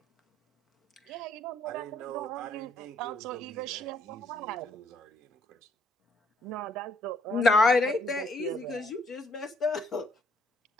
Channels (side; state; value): both; normal; correlation 0.68